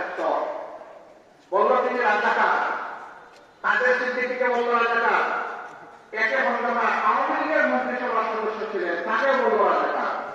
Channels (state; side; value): identical; both; correlation 1.00